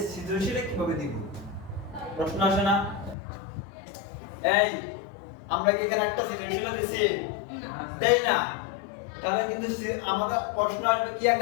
সৃজনশীলে কিভাবে দিব? প্রশ্ন আসে না? এই আমরা কি এখানে একটা সৃজনশীল দিছি? দেই না, তাহলে কিন্তু আমাদের প্রশ্ন আসবে কি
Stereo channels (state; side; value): drops out; right; at 3.2 s